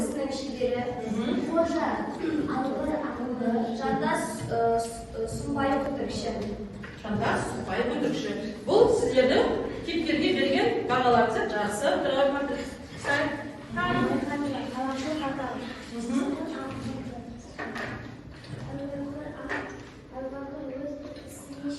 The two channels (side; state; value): both; identical; correlation 1.00